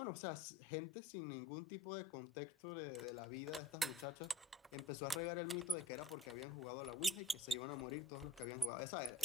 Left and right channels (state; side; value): normal; both; correlation 0.54